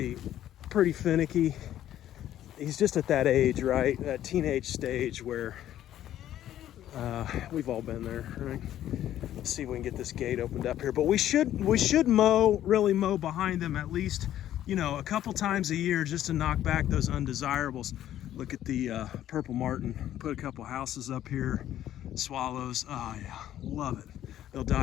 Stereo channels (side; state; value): right; quieter; 12.1 dB